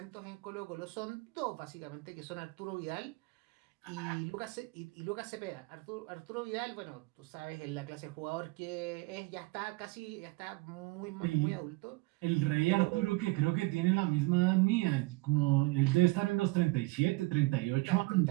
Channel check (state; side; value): quieter; left; 23.0 dB